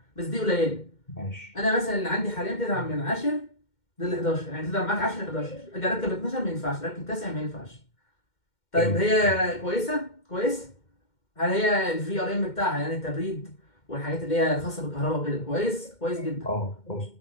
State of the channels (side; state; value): right; late; 2.1 ms